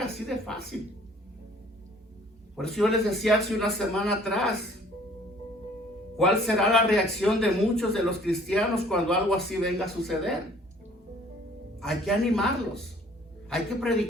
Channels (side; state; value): both; normal; correlation 0.55